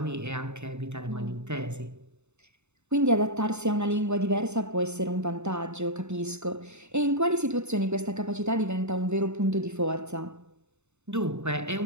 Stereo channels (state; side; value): late; left; 0.82 ms